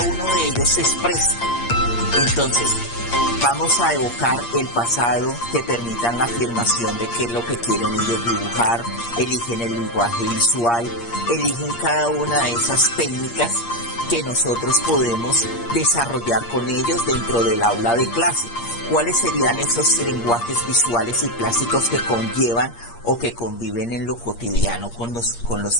uno de ellos se exprese. Entonces, vamos a evocar el pasado que permitan la afirmación de qué es lo que quieren ellos dibujar, eligen el lenguaje visual, eligen cada una de esas técnicas que nosotros podemos desarrollar con ellos dentro del aula de clase. ¿Cuáles serían esos lenguajes visuales y plásticos que conllevan o que conviven en lo cotidiano con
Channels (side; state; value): right; late; 8.6 ms